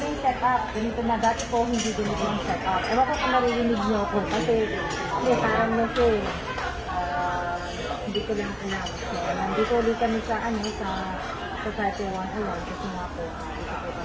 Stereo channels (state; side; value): identical; both; correlation 1.00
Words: yung setup. Ganito na dati po, hindi ganito yung setup. Ewan ko kung naririnig niyo ako. Kasi, parang na siya eh. Hindi ko lang alam. So, nandito ulit kami sa Society 101 kasi nga po, dito po